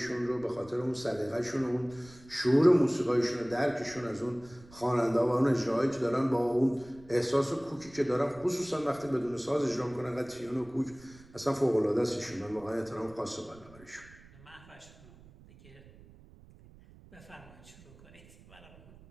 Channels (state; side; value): noise; right; rumble, 23 dB below the sound